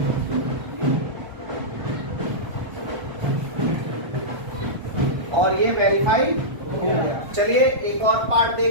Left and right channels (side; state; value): left; late; 1.5 ms